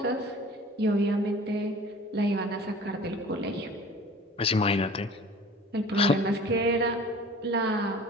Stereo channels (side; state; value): both; normal; correlation 0.44